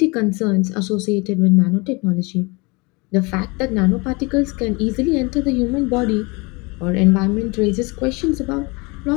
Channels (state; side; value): quieter; right; 27.5 dB